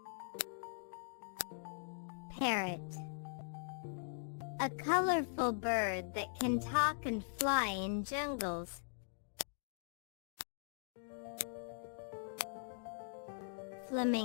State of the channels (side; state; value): right; silent; digital silence